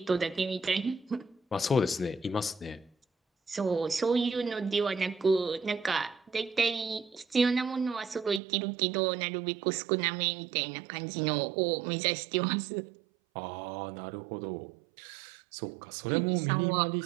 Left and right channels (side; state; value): left; drops out; at 8.4 s